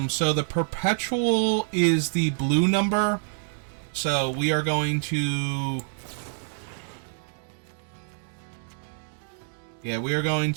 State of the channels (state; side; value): silent; left; digital silence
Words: So the Perpetual is the blue number, so we are going to... Yeah, we are going